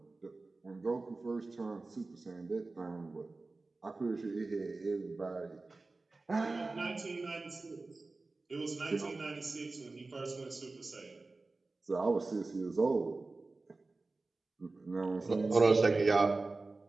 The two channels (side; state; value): left; quieter; 3.5 dB